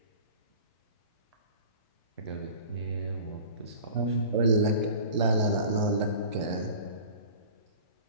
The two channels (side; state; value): both; inverted; correlation -0.41